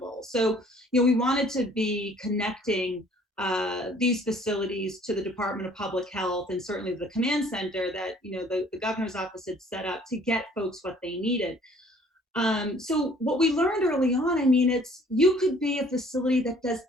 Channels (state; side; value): normal; both; correlation 0.56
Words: So, we wanted to be connecting these facilities to the Department of Public Health and certainly the command center that, the governor's office had set up to get folks what they needed. So what we learned early on, you could be a facility that does